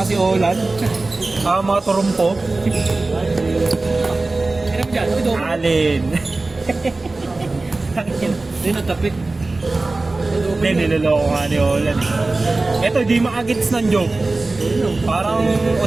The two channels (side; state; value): left; quieter; 3.3 dB